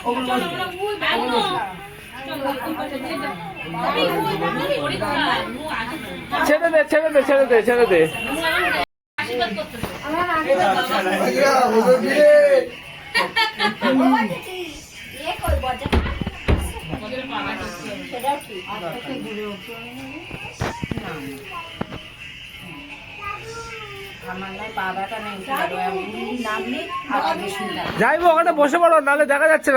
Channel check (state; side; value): identical; both; correlation 1.00